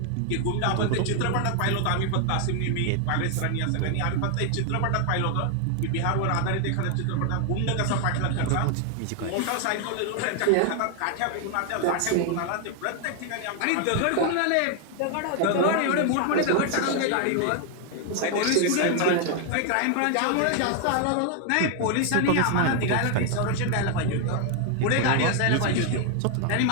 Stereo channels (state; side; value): different; both; correlation 0.00